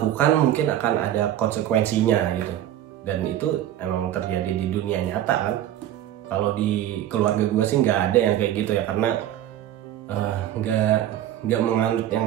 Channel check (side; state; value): left; quieter; 12.1 dB